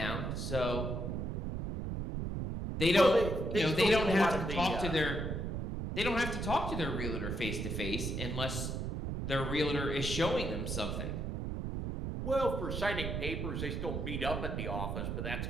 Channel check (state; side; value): noise; right; rumble, 3 dB below the sound